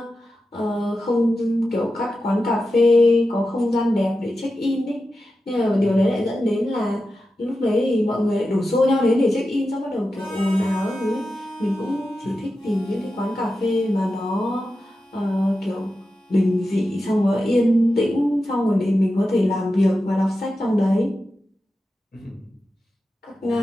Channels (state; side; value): normal; both; correlation 0.91